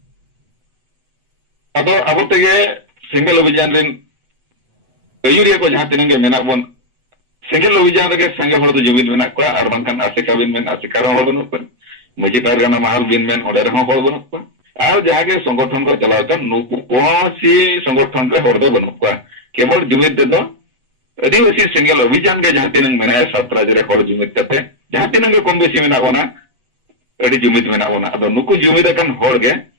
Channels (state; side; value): late; left; 8.1 ms